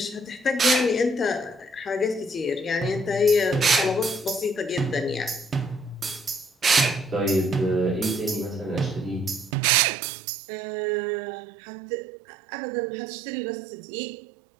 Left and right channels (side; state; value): left; drops out; at 9.6 s